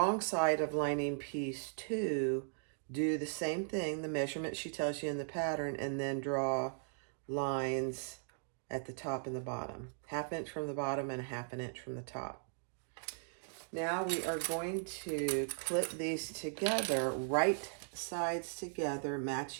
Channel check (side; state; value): left; silent; digital silence